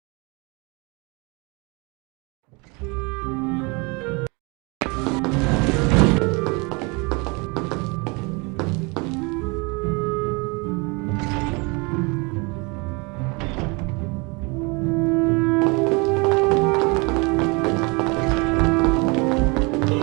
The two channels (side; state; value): left; quieter; 28.9 dB